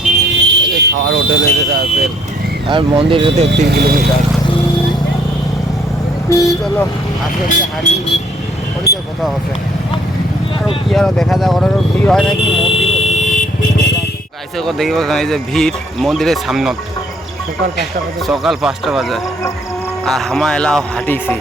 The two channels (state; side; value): normal; both; correlation 0.64